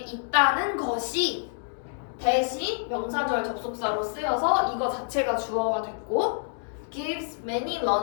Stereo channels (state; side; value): silent; right; digital silence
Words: 것이 대신 명사절 접속사로 쓰여서 이거 자체가 주어가 됐고 gives many